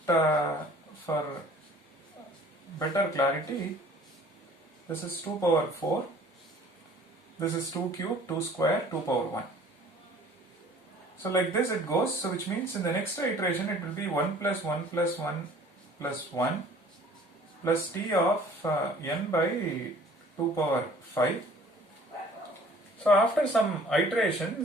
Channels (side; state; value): both; normal; correlation 0.51